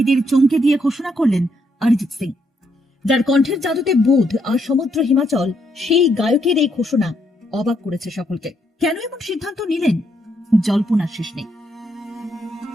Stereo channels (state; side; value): normal; both; correlation 0.75